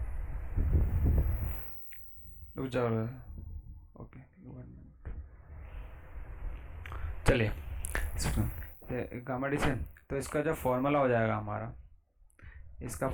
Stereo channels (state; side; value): identical; both; correlation 1.00